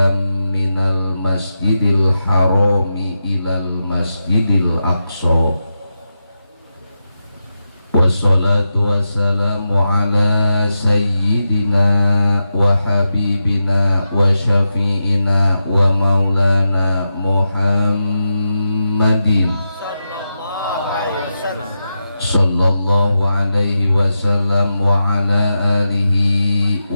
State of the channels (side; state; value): both; inverted; correlation -0.89